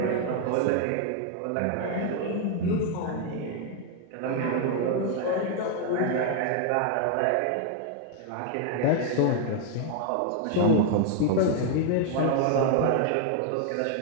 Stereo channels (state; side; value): different; both; correlation 0.00